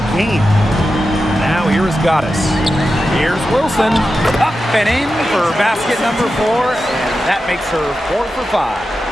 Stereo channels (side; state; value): both; normal; correlation 0.91